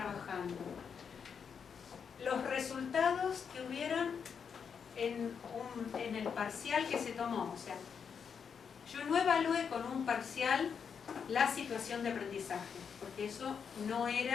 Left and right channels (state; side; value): quieter; right; 6.7 dB